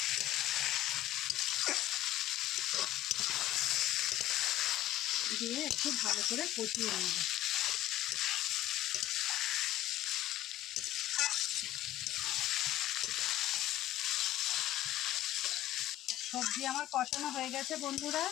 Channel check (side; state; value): right; quieter; 14.2 dB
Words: দিয়ে একটু ভালো করে কষিয়ে নেব। সবজি আমার কষানো হয়ে গেছে বন্ধুরা।